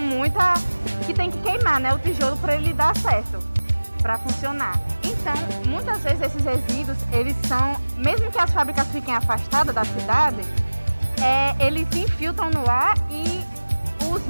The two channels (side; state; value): both; inverted; correlation -1.00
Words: que tem que queimar, né, o tijolo para ele dar certo, para funcionar. Então, muitas vezes esses resíduos, eles são, mesmo que as fábricas fiquem afastadas da cidade, eles se infiltram no ar e os